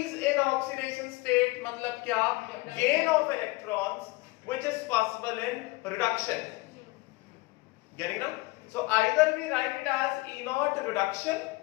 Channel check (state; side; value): quieter; right; 23.2 dB